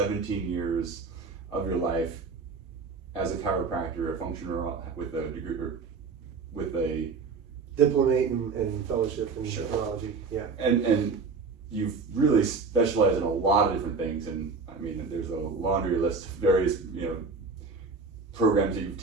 years of your life as a chiropractor, a functional with a degree, with a diplomate and fellowship in neurology. Yeah. And you've really specialized in a lot of different things, and I mean, there's a laundry list of various, programs that you've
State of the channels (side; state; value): left; quieter; 4.6 dB